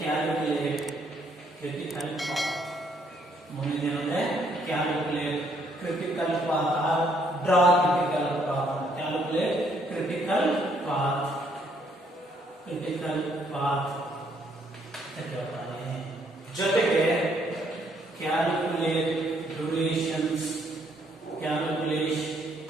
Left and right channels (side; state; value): both; normal; correlation 0.69